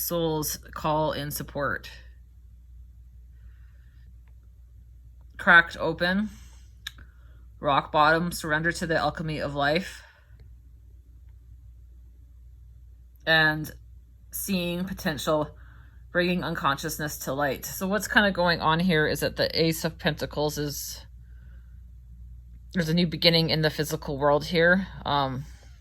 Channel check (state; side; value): identical; both; correlation 1.00